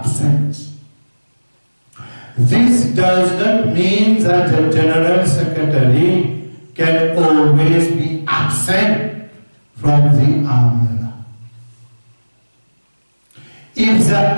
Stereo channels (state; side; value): inverted; both; correlation -1.00